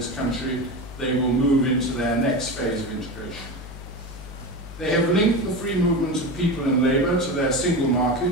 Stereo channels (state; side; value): noise; left; hum, 13 dB below the sound